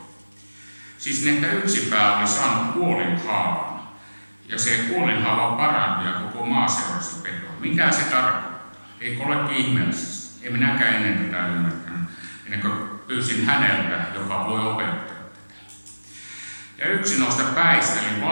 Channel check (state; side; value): inverted; both; correlation -1.00